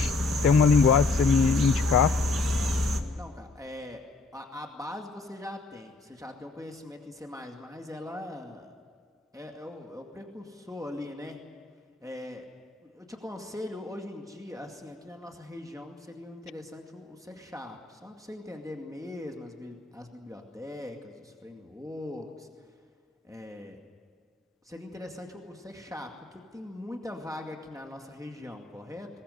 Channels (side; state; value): right; quieter; 3.9 dB